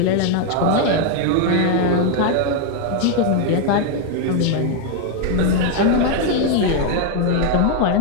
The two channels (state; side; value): different; both; correlation 0.01